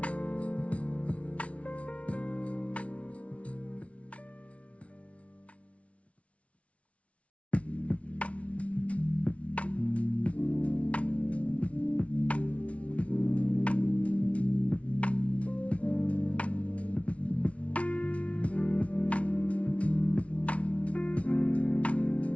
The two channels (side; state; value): right; late; 0.064 ms